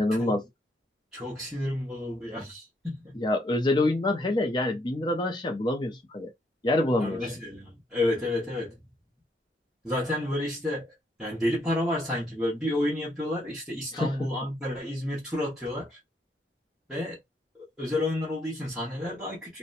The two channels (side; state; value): both; normal; correlation 0.73